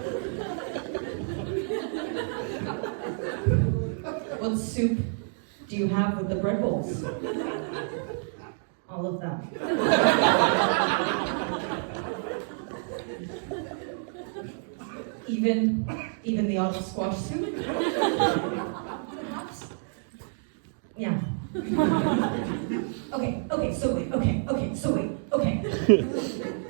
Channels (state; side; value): silent; left; 59 dB below the other